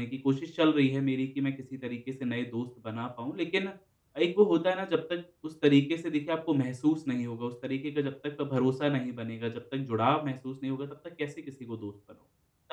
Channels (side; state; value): both; identical; correlation 1.00